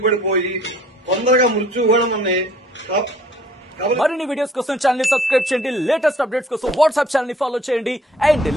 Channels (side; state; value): both; normal; correlation 0.55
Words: తొందరగా మృత్యువు కూడా మనని. మరిన్ని వీడియోస్ కోసం ఛానల్ ని సబ్స్క్రైబ్ చేయండి. లేటెస్ట్ అప్డేట్స్ కోసం వాట్సాప్ ఛానల్ ని ఫాలో చేయండి. అండ్